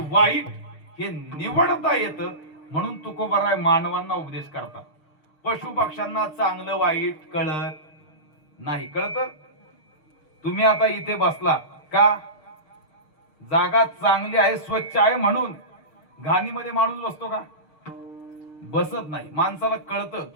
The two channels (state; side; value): late; right; 6.5 ms